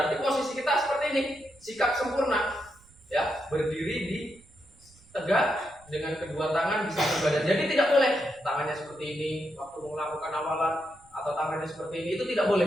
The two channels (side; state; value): right; noise; rumble, 28 dB below the sound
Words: posisi kita seperti ini, sikap sempurna, ya, berdiri di tegak dengan kedua tangan di samping badan. Jadi tidak boleh tangannya seperti ini waktu melakukan awalan atau tangannya seperti ini, itu tidak boleh.